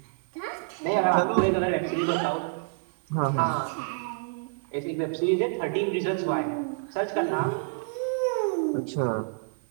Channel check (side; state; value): left; silent; digital silence